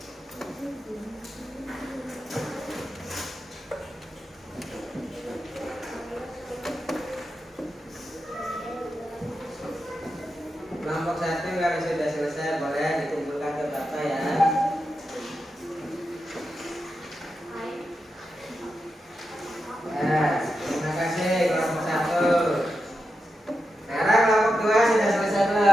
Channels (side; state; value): both; normal; correlation 0.88